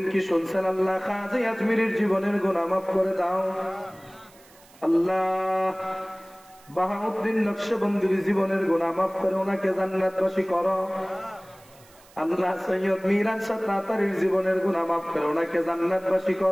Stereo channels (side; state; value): right; noise; hiss, 26 dB below the sound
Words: কি শুনছেন আল্লাহ খাজা আজমিরের জীবনের গুনাহ মাফ করে দাও? আল্লাহ বাহাউদ্দিন নকশবন্দির জীবনের গুনাহ মাফ করে ওনাকে জান্নাতবাসী করো। আল্লাহ সৈয়দ মিরান শাহ তাতারীর জীবনের গুনাহ মাফ করে ওনাকে জান্নাতবাসী